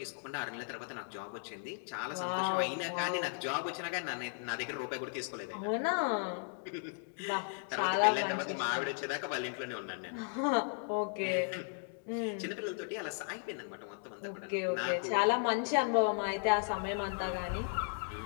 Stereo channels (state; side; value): silent; right; 54 dB below the other